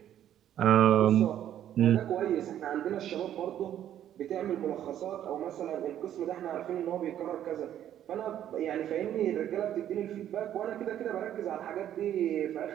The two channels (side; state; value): left; quieter; 11.0 dB